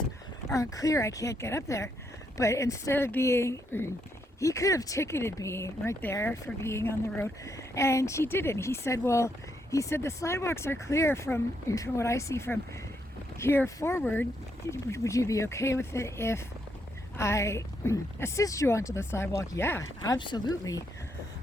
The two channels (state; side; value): normal; both; correlation 0.77